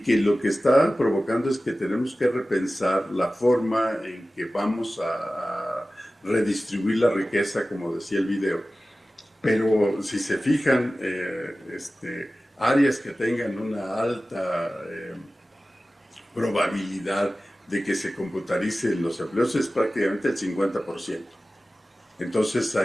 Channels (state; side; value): normal; both; correlation 0.96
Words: lo que está provocando es que tenemos que repensar la forma en que vamos a redistribuir la riqueza, como decía el video. Pero si se fijan, áreas que tengan una alta probabilidad de que se computaricen los empleos es prácticamente el 50%. Entonces